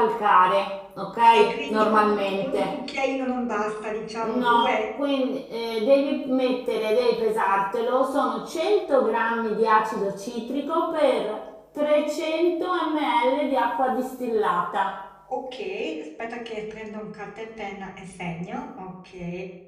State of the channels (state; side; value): identical; both; correlation 1.00